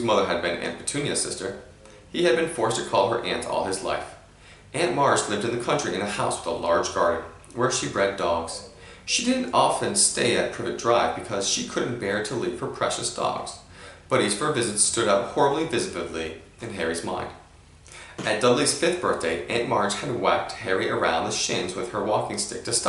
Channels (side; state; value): both; identical; correlation 1.00